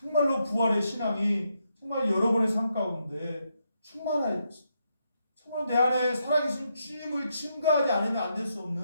부활의 신앙이 정말 여러분의 삶 가운데 충만해야 돼요. 정말 내 안에 살아계신 주님을 증거하지 않으면 안 될 수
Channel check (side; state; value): both; inverted; correlation -0.80